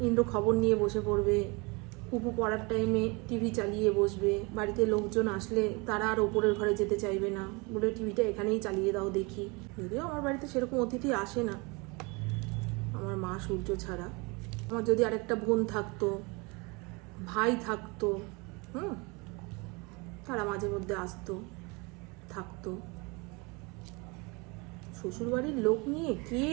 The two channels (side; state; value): left; quieter; 28.2 dB